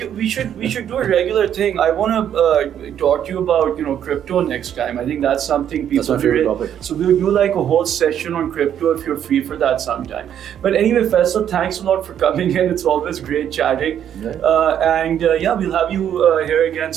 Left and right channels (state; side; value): quieter; left; 9.7 dB